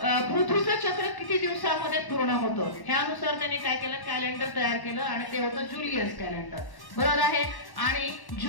पृथ्वीचं चक्र किती दिवसामध्ये पूर्ण होतं ह्यानुसार त्यांनी काय केलं कॅलेंडर तयार केलं आणि ते होतं जुलियस कॅलेंडर. बरोबर आहे. आणि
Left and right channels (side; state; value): right; late; 1.1 ms